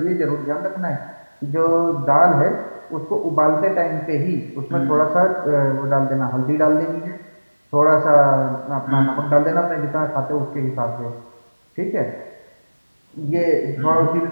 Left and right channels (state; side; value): inverted; both; correlation -1.00